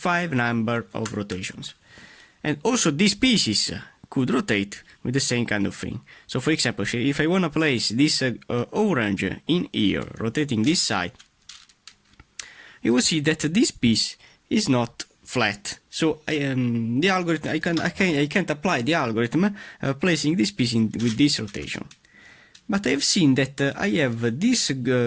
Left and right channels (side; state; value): both; identical; correlation 1.00